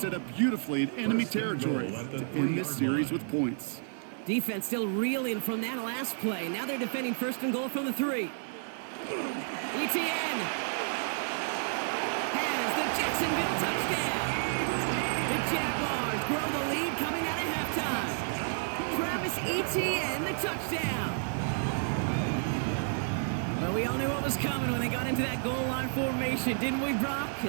up beautifully in enemy territory to end this series with points. Defense still reeling from that last play. Now they're defending 1st and goal from the 3. Etienne has the Jacksonville touchdown. The Jaguars grow the lead coming out of halftime. Travis Etienne, the touchdown. Well, we all knew what was coming when they got into that goal line formation, didn't we, Brock?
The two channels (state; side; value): silent; left; digital silence